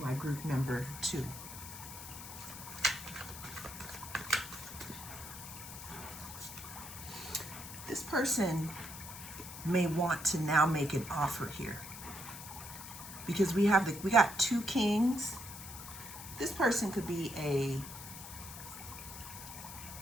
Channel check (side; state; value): left; noise; hiss, 11 dB below the sound